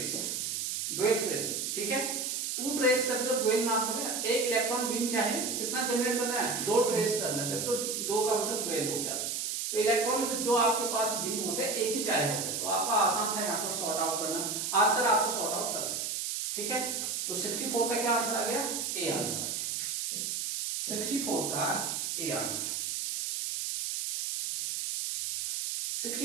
dual trace. ठीक है, टू ट्रेस तब तो डुअल नाम पड़ेगा। एक इलेक्ट्रॉन बीम चाहे कितना जनरेट करना है, दो ट्रेस करना है, तो दो का मतलब डुअल हो गया। तो इलेक्ट्रॉन जो आपके पास बीम होते हैं एक ही चाहिए होते हैं, तो आपका आसान था यहाँ पर सॉर्ट आउट करना, आंसर आपको सॉर्ट आउट कर सकते। ठीक है, तो 64 का क्या आंसर आ गया, ए आंसर आ गया, 64 का ए आंसर।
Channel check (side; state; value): right; noise; hiss, 2 dB below the sound